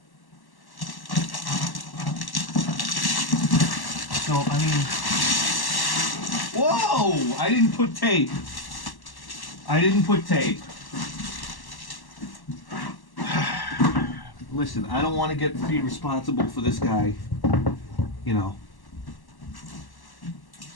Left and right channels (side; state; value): right; late; 1.1 ms